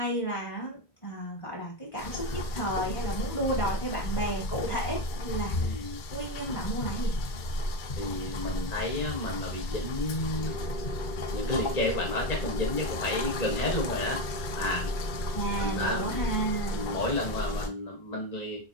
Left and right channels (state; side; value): late; right; 2.2 ms